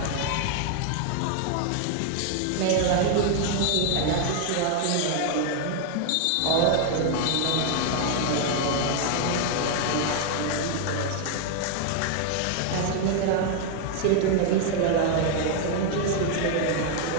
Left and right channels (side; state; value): both; different; correlation 0.00